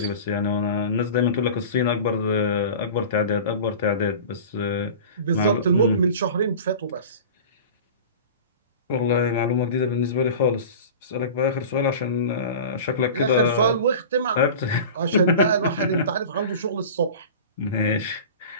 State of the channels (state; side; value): inverted; both; correlation -0.36